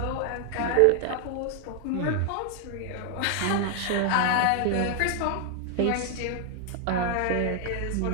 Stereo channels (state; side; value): different; both; correlation 0.00